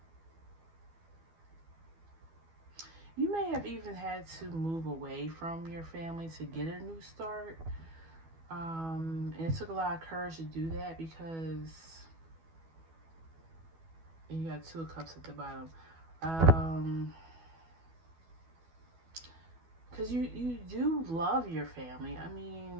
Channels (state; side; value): late; left; 12 ms